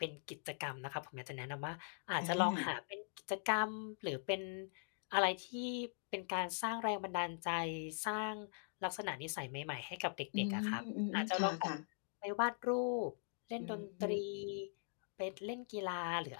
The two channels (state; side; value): silent; right; digital silence